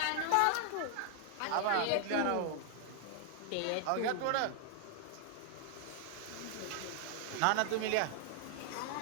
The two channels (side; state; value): both; different; correlation 0.00